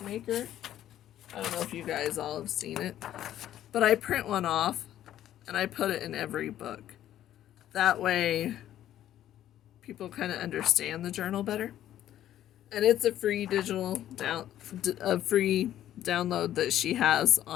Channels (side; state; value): right; quieter; 12.0 dB